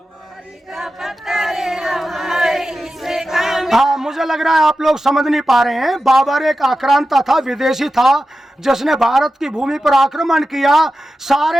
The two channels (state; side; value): normal; both; correlation 0.92